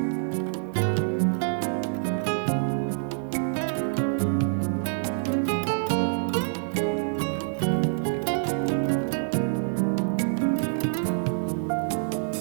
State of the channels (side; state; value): left; silent; digital silence